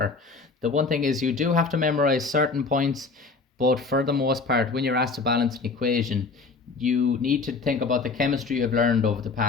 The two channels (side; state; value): right; quieter; 4.2 dB